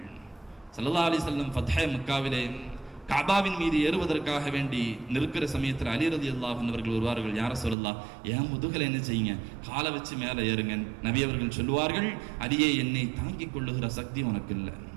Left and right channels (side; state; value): left; drops out; at 7.8 s